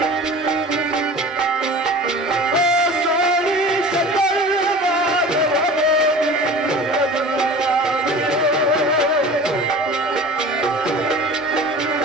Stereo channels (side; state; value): both; normal; correlation 0.39